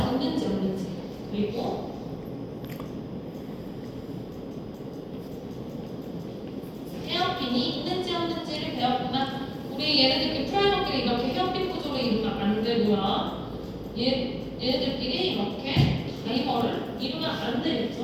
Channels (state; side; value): identical; both; correlation 1.00